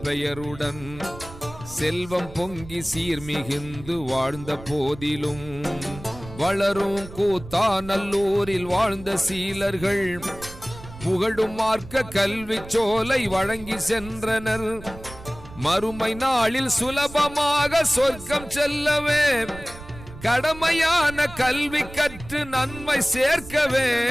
பெயருடன் செல்வம் பொங்கி சீர்மிகுந்து வாழ்ந்த போதிலும், வளரும் கூத்தாநல்லூரில் வாழ்ந்த சீலர்கள் புகழும் மார்க்க கல்வி சோலை வழங்கி சென்றனர். மறுமை நாளில் சுலபமாக சொர்க்கம் செல்லவே கடமையான கல்வி கற்று நன்மை சேர்க்கவே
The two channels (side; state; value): right; noise; rumble, 16 dB below the sound